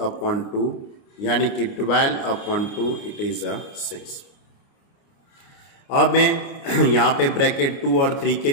अपॉन 2 यानी कि 12 अपॉन 2 इट इज 6। अब मैं यहाँ पे ब्रैकेट 2 और 3 के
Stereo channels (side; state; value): right; late; 29 ms